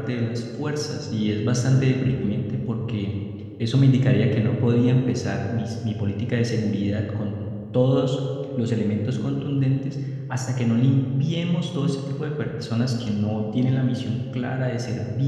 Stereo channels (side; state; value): both; identical; correlation 1.00